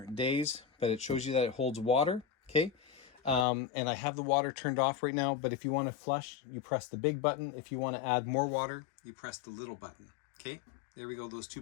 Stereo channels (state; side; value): drops out; right; at 3.5 s